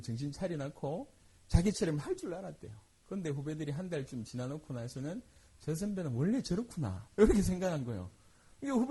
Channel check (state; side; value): identical; both; correlation 1.00